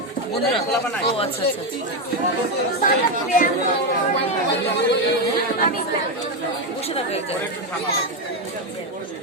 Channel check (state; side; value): normal; both; correlation 0.08